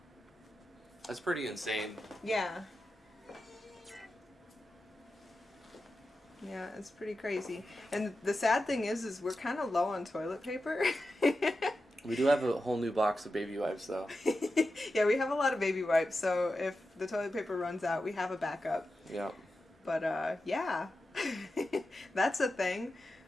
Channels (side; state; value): both; normal; correlation 0.91